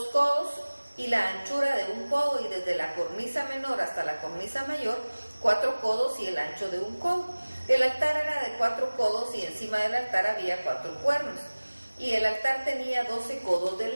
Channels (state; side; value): inverted; both; correlation -1.00